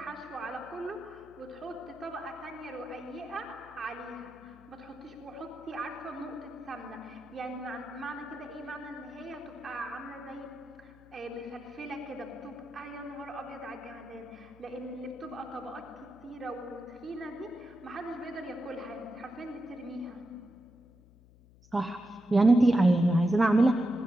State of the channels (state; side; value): noise; left; hum, 24 dB below the sound